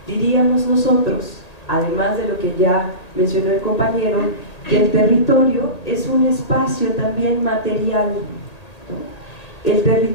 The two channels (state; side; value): late; right; 1.8 ms